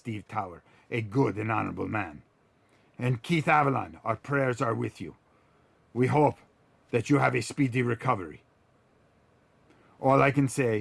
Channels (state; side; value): identical; both; correlation 1.00